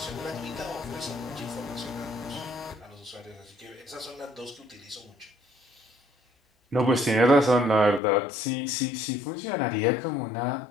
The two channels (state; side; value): drops out; right; at 8.0 s